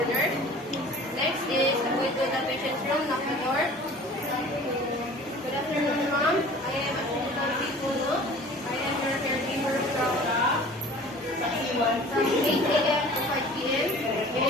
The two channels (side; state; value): both; normal; correlation 0.45